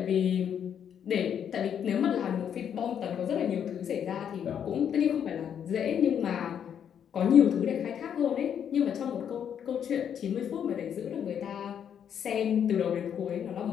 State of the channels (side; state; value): right; quieter; 8.6 dB